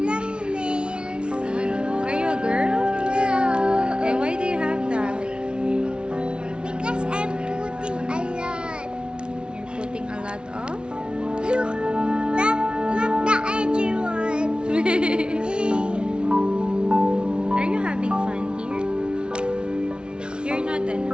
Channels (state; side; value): late; left; 0.056 ms